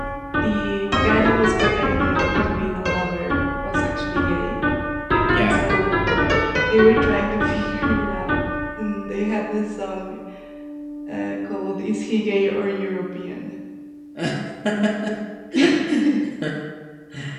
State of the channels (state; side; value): identical; both; correlation 1.00